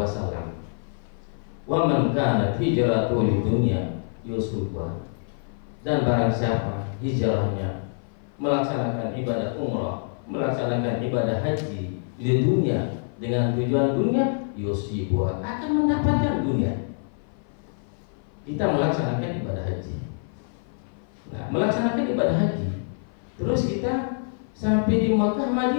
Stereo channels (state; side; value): silent; right; 55 dB below the other